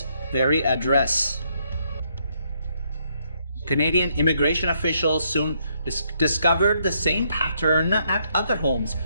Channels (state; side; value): inverted; both; correlation -0.73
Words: very address. Canadian immigration officials soon discovered the same pattern at other homes